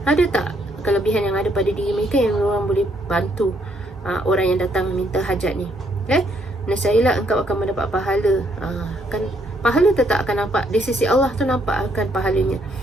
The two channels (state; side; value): normal; both; correlation 0.71